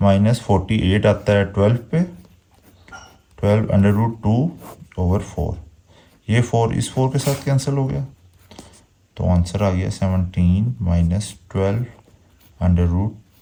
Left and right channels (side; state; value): both; identical; correlation 1.00